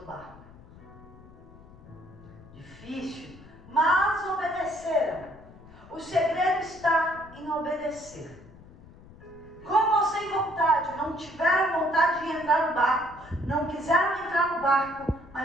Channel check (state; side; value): noise; left; rumble, 21 dB below the sound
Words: barco? Difícil, mas obedeceram. O segredo está em obedecer. Com ou sem vontade, não tiveram vontade de entrar no barco, não quiseram entrar no barco,